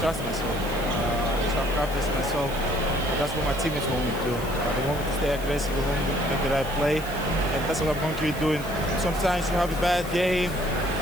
myself. I just have confidence in myself. That's what my teammates want me to do. They want me to stay aggressive, they want me to make the right play, and that's what I'm going to keep doing. Sometimes you have a bad game,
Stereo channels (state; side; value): noise; left; hiss, 15 dB below the sound